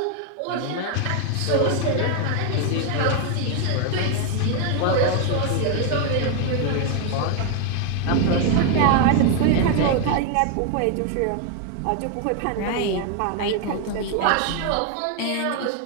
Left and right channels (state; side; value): different; both; correlation 0.00